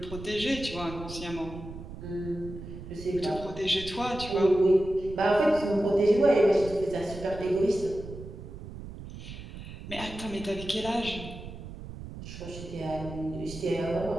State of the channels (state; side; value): noise; right; rumble, 12 dB below the sound